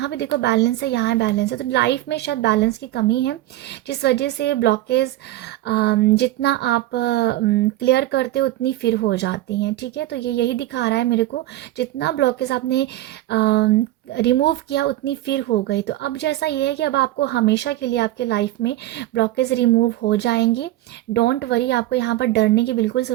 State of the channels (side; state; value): left; quieter; 15.5 dB